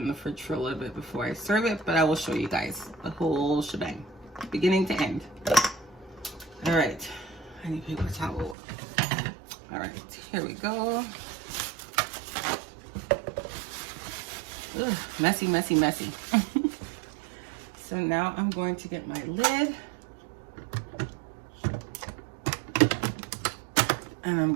the fridge for a little bit before I serve it, but I will show you guys the whole shebang, beginning to end. All right, I need a paper towel. All right, here we go. Ugh, messy, messy, messy. So now I'm going to get my lid. And I'm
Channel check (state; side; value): drops out; left; at 8.6 s